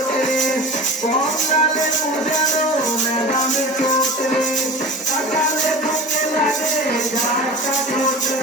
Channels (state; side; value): normal; both; correlation 0.34